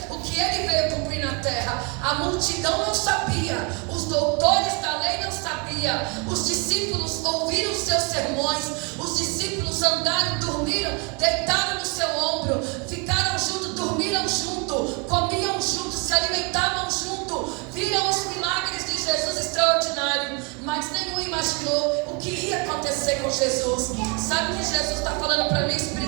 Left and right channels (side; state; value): left; quieter; 32.5 dB